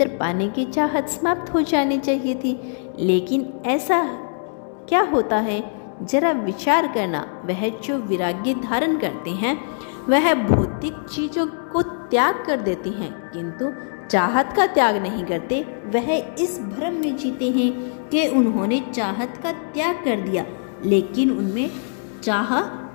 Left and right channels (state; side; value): silent; right; 64 dB below the other